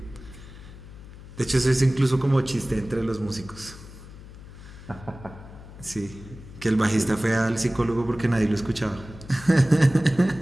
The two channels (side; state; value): left; noise; hum, 16 dB below the sound